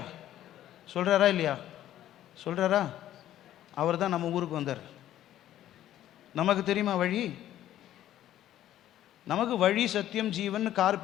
சொல்கிறாரா இல்லையா? சொல்கிறாரா? அவர் தான் நம்ம ஊருக்கு வந்தார். நமக்கு தெரியுமா வழி? நமக்கு வழி சத்தியம் ஜீவன் கார்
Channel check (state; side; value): quieter; right; 12.5 dB